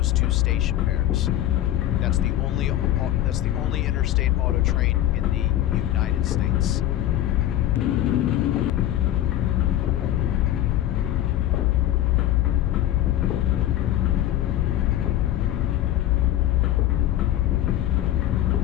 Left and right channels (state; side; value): quieter; right; 13.1 dB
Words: two station pairs. That's the only interstate auto train in the United States.